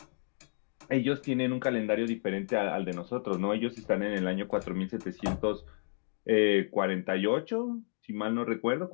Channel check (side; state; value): right; silent; digital silence